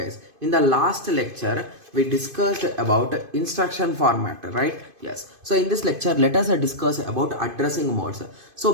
In the last lecture, we discussed about instruction format, right? Yes. So in this lecture, let us discuss about addressing modes.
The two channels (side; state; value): left; late; 2.5 ms